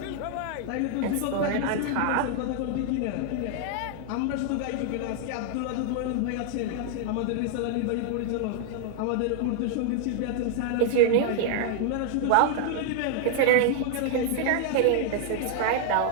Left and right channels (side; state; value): both; different; correlation 0.00